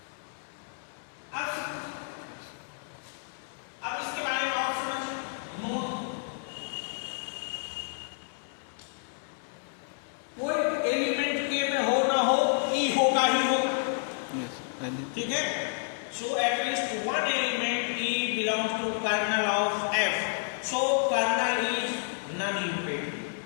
अब इसके बारे में और समझिए। नोट, कोई एलिमेंट के में हो ना हो, ई होगा ही होगा, यस पहले ठीक है। So at least one element e belongs to kernel of f, so kernel is non imperative.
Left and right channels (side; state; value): right; silent; 58 dB below the other